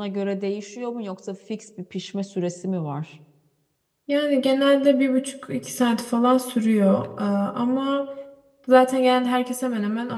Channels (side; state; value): both; identical; correlation 1.00